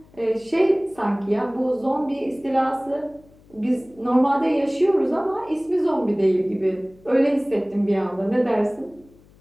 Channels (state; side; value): noise; left; hum, 27 dB below the sound